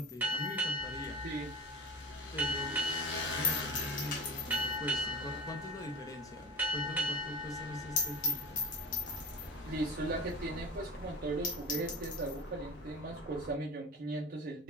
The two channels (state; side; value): normal; both; correlation 0.33